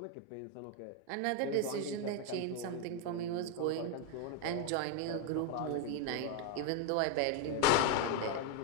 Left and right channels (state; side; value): different; both; correlation 0.01